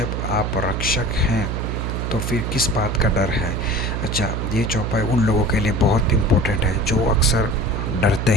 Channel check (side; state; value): right; noise; hum, 2 dB below the sound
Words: आप रक्षक हैं तो फिर किस बात का डर है। अच्छा, ये चौपाई उन लोगों के लिए बहुत इम्पोर्टेंट है जो अक्सर डरते